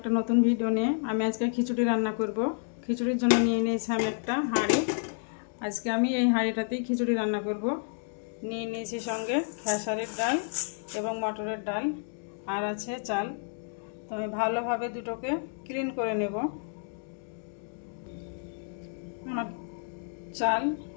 নতুন ভিডিও নিয়ে। আমি আজকে খিচুড়ি রান্না করব। খিচুড়ির জন্য নিয়ে নিয়েছি আমি একটা হাঁড়ি। আজকে আমি এই হাঁড়িটাতেই খিচুড়ি রান্না করব। নিয়ে নিয়েছি সঙ্গে খেসারির ডাল এবং মটরের ডাল, আর আছে চাল। তো আমি ভালোভাবে দুটোকে ক্লিন করে নেব। আমার চাল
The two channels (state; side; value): silent; right; 58 dB below the other